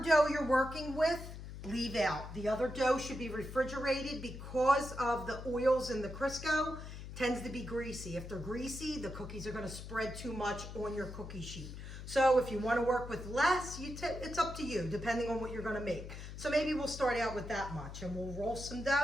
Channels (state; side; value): noise; left; hum, 10 dB below the sound